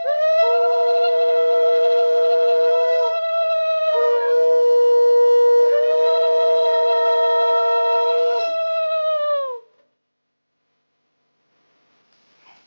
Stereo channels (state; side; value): inverted; both; correlation -1.00